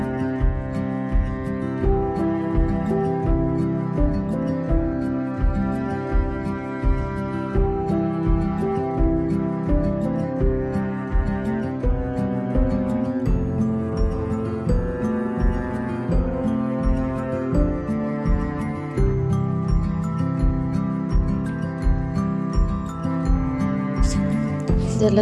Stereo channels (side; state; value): both; identical; correlation 1.00